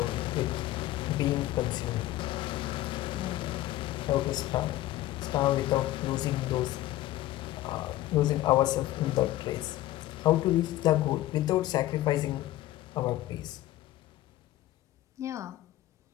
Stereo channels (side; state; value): right; quieter; 15.2 dB